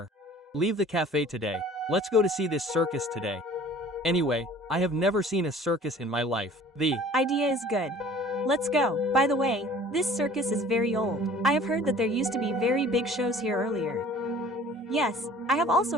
Leave the cafe today. Let's go to see this circus today. Anyway, I have never seen a circus in my life. The idea is good. Let's go. By the way, this circus is very old. I have heard that there used to be very big shows here earlier. Yes, I have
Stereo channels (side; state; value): both; normal; correlation 0.49